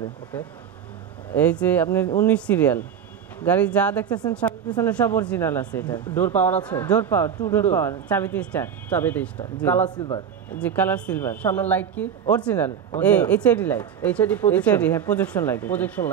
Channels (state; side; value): quieter; left; 8.1 dB